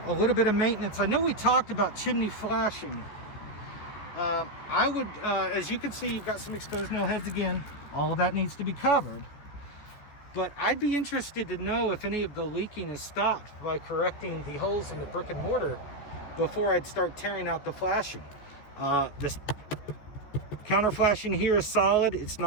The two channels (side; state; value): right; late; 14 ms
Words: a little bit of maintenance. I know we talked about chimney flashing. I would, as you can see, you've got some exposed nail heads again. All of that needs to be covered. But I'd be interested to know if any of the leaking is stopped by correcting the holes in the brick and mortar before I'd start tearing out the flashing. This counter flashing here is solid. It's